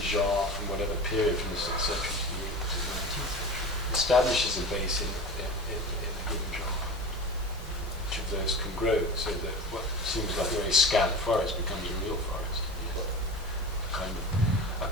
genre from whatever period, from the 6th century to the 19th century, establishes a base in a given genre. Each of those can grow so that what seems like a very scant forest becomes a real forest. A kind of a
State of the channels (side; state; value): both; normal; correlation 0.31